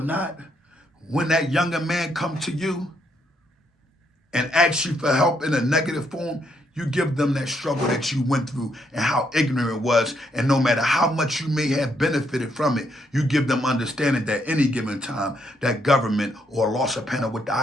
when that younger man comes to you and asks you for help in a negative form, you give them that struggle that you went through and how ignorant it was. And no matter how much you may have benefited from it, you give them understanding that any given time, that government or Los Apena with the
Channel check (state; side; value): normal; both; correlation 0.75